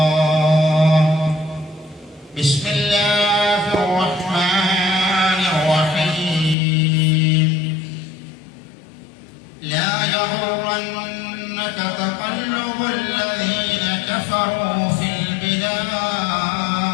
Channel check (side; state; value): right; drops out; at 6.6 s